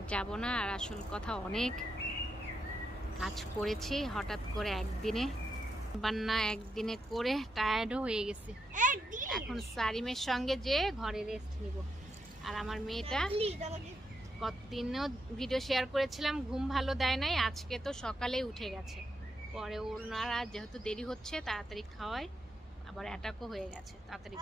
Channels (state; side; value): normal; both; correlation 0.82